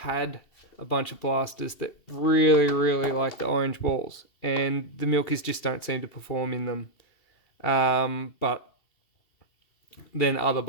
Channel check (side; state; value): right; late; 2.7 ms